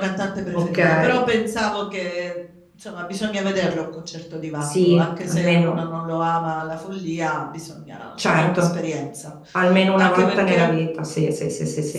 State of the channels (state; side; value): identical; both; correlation 1.00